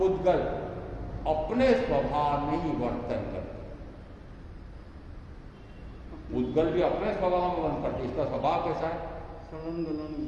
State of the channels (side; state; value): both; identical; correlation 1.00